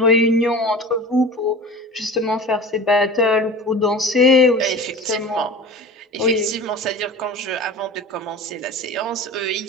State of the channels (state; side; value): normal; both; correlation 0.36